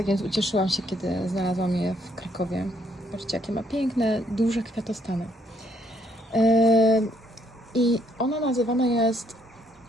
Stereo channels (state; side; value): normal; both; correlation 0.70